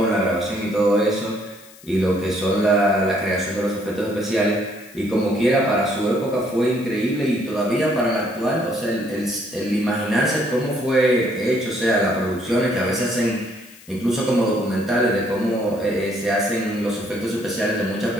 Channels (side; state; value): left; noise; hiss, 22 dB below the sound